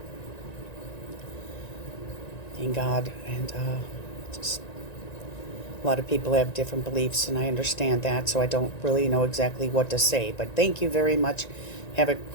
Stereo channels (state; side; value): late; right; 1.9 ms